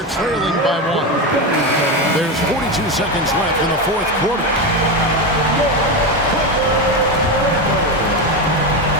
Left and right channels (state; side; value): normal; both; correlation 0.15